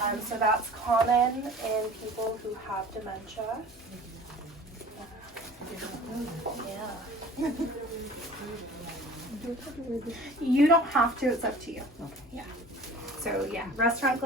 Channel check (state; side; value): normal; both; correlation 0.44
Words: So that's common in people who have dementia. Yeah. You don't have to, it's up to you. Okay. Yeah. So yeah, restaurant